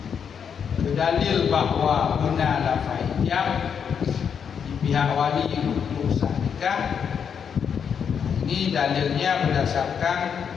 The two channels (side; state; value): right; quieter; 7.3 dB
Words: Berdalil bahwa benar lafai ijab di pihak wali untuk sah nikah. Ini dalilnya berdasarkan